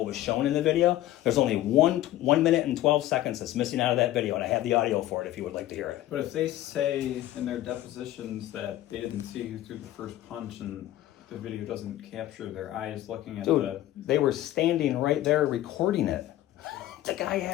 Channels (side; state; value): right; quieter; 14.3 dB